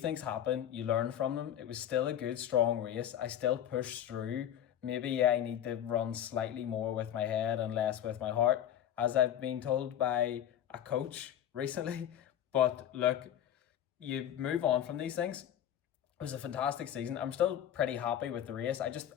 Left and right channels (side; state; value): right; quieter; 10.6 dB